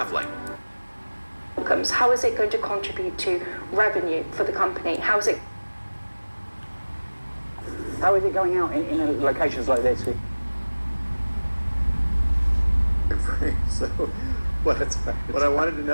Outcomes. How is it going to contribute to revenue for the company? How is it going out in locations like this? So what I wanted to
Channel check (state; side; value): inverted; both; correlation -1.00